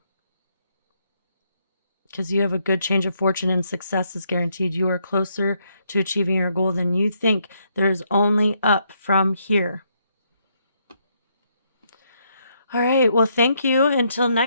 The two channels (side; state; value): both; inverted; correlation -0.75